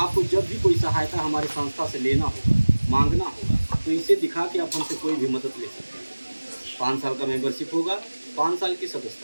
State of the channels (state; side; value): inverted; both; correlation -1.00